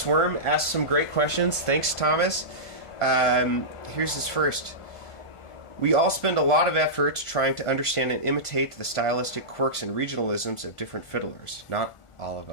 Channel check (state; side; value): late; right; 1.4 ms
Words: Worm asked some great questions. Thanks, Thomas. Here's his first. We all spend a lot of effort trying to understand and imitate the stylistic quirks and regionalisms of different fiddlers. Not all of